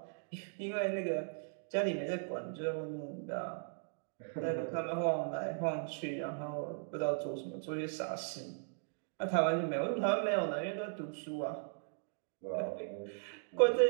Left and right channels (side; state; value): left; silent; digital silence